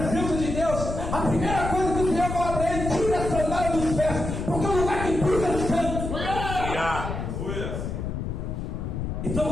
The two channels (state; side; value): noise; left; rumble, 4 dB below the sound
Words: de Deus, a primeira coisa que o Senhor fala para ele, tira a sandália dos pés, porque o lugar que pisa é santo. Então